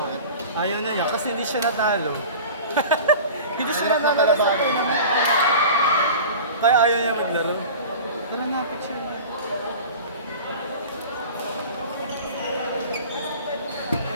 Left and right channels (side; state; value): both; inverted; correlation -0.37